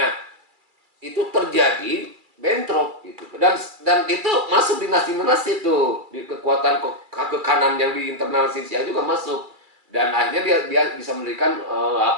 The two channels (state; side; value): late; left; 2.3 ms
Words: itu terjadi bentrok gitu. Dan itu masuk dinasti-dinasti itu, di kekuatan kekanan yang di internal Xinjiang juga masuk. Dan akhirnya dia bisa mendirikan